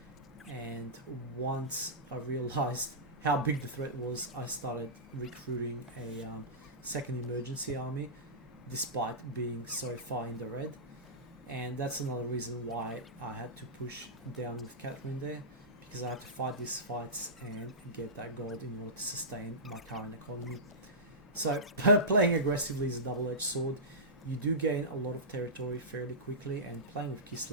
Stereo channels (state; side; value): normal; both; correlation -0.17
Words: and once I realized how big the threat was, I started recruiting a second emergency army, despite being so far in the red. And that's another reason why I had to push down with Catherine there, because I had to fight these fights and get that gold in order to sustain my current economy. So playing aggressively is a double-edged sword. You do gain a lot of territory fairly quickly, and playing with